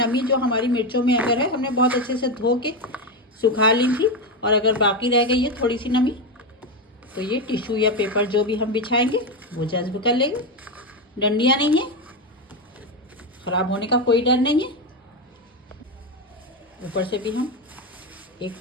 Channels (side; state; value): both; normal; correlation 0.12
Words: जो हमारी मिर्चों में अगर है, हमने बहुत अच्छे से धो के सुखा ली थी, और अगर बाकी रह गई है थोड़ी सी नमी, तो ये टिश्यू या पेपर जो भी हम बिछाएंगे वो जज्ब कर लेंगे। डंडियाँ नहीं है, ख़राब होने का कोई डर नहीं है। ऊपर से भी हम एक